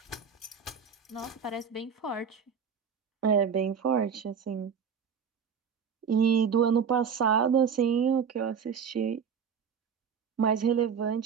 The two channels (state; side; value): quieter; left; 6.9 dB